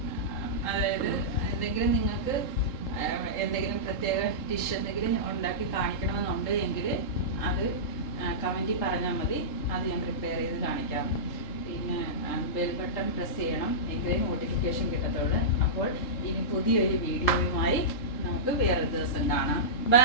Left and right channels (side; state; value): right; late; 3.7 ms